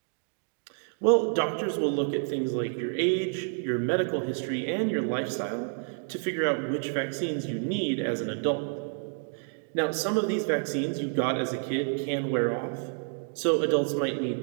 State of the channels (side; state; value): left; silent; 59 dB below the other